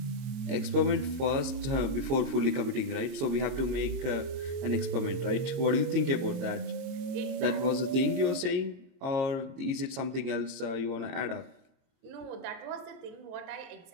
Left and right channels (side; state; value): left; late; 22 ms